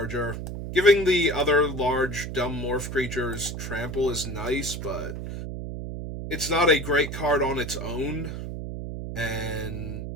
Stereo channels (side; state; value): right; noise; hum, 6 dB below the sound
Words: Giving the other large, dumb morph creatures trample is nice, but it's not a great card on its own. And